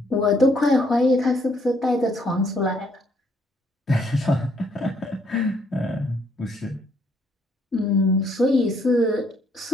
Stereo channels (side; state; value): both; normal; correlation 0.69